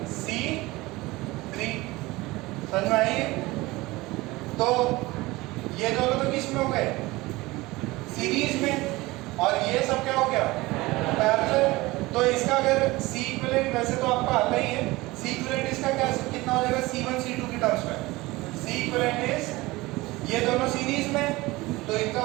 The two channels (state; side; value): quieter; left; 20.7 dB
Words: C3। समझ में आई? तो ये दोनों तो किस में हो गए? सीरीज में। और ये सब क्या हो गया? पैरेलल। तो इसका अगर C इक्विवेलेंट, वैसे तो आपको आता ही है, C इक्विवेलेंट इसका क्या कितना हो जाएगा? C1 C2 की टर्म्स में C इक्विवेलेंट इज, ये दोनों सीरीज में तो इनका